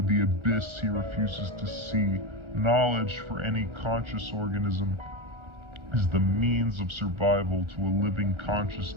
the abyss he refuses to see. Knowledge for any conscious organism is the means of survival to a living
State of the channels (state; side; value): late; left; 1.4 ms